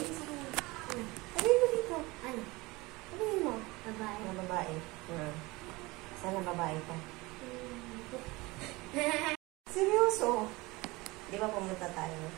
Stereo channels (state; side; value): quieter; left; 22.5 dB